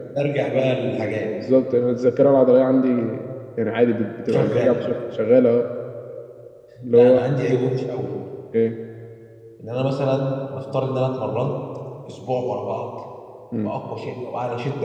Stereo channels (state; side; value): identical; both; correlation 1.00